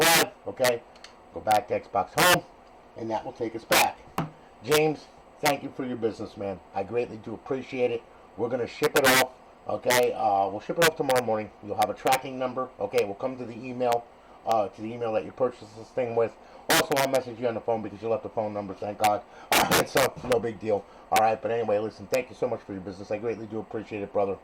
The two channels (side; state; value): both; identical; correlation 1.00